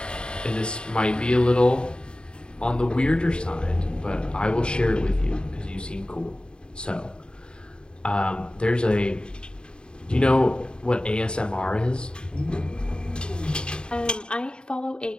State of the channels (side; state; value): right; late; 0.050 ms